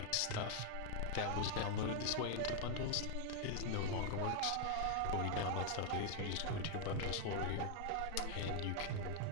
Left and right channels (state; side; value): different; both; correlation 0.00